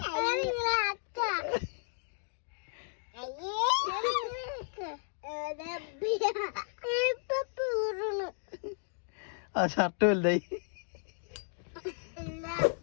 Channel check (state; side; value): silent; right; digital silence